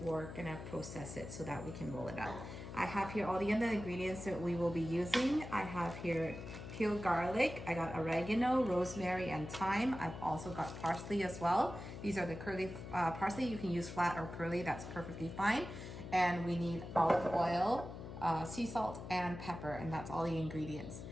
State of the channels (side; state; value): left; noise; hum, 10 dB below the sound